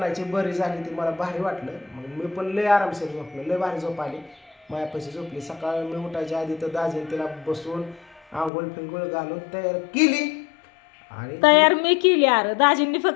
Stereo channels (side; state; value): right; drops out; at 8.5 s